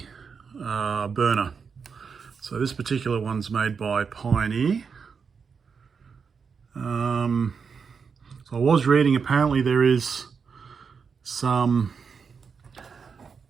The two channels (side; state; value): left; quieter; 5.8 dB